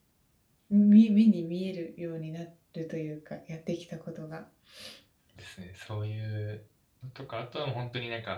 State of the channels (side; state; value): both; identical; correlation 1.00